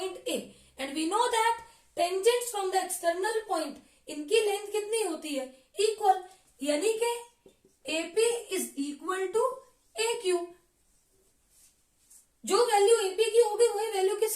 A and we know that tangents from the external point, इनकी लेंथ कितनी होती है? इक्वल, यानी कि AP is equal to AQ। जो वैल्यू AP की होगी वही वैल्यू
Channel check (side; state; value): both; identical; correlation 1.00